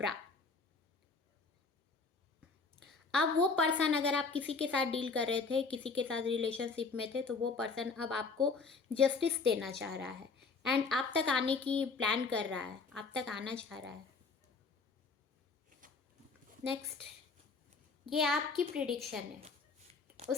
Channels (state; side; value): quieter; right; 4.4 dB